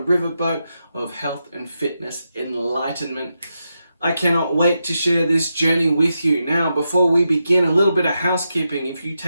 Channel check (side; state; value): both; inverted; correlation -0.87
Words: of health and fitness enlightenment. I cannot wait to share this journey with you. Now, before we begin, a little bit of housekeeping. If you